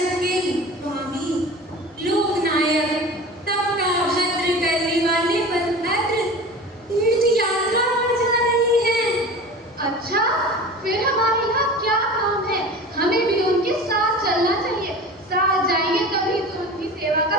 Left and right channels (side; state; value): both; normal; correlation 0.35